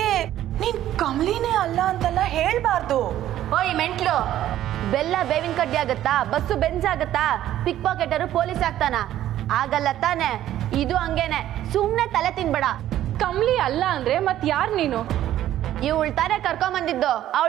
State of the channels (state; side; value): quieter; left; 12.6 dB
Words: ನೀನ್ ಕಮಲಿನೇ ಅಲ್ಲ ಅಂತೆಲ್ಲ ಹೇಳ್ಬಾರ್ದು. ಓಯ್ ಮೆಂಟ್ಲು, ಬೆಲ್ಲ ಬೇವಿನ ಕಡ್ಡಿ ಆಗತ್ತಾ? ಬಸ್ಸು ಬೆಂಜ್ ಆಗತ್ತಾ? ಪಿಕ್ ಪಾಕೆಟರು ಪೊಲೀಸ್ ಆಗ್ತಾನ? ಆಗಲ್ಲ ತಾನೆ. ಇದು ಹಂಗೇನೆ, ಸುಮ್ನೆ ತಲೆ ತಿನ್ಬೇಡ. ಕಮ್ಲಿ ಅಲ್ಲ ಅಂದ್ರೆ ಮತ್ ಯಾರ್ ನೀನು? ಇವಳು ತಾನೇ ಕರ್ಕೊಂಡ್ ಬಂದಿದ್ದು,